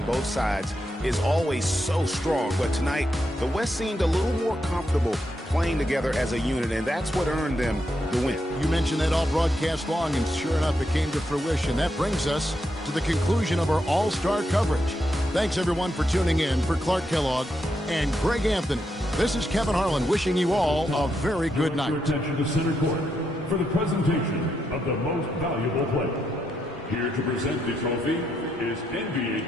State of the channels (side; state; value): both; normal; correlation 0.81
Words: both sides is always so strong. But tonight, the West seemed a little more comfortable playing together as a unit, and that's what earned them the win. You mentioned that all broadcast long, and sure enough, it came to fruition. That brings us to the conclusion of our All-Star coverage. Thanks, everyone, for tuning in. For Clark Kellogg and Greg Anthony, this is Kevin Harlan wishing you all a very good night. Attention to center court for the presentation of the most valuable player. Here to present the trophy is NBA